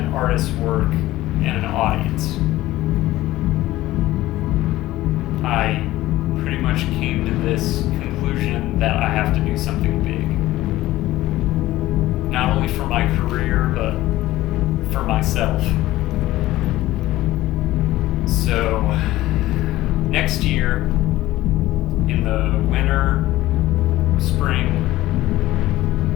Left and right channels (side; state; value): right; quieter; 16.3 dB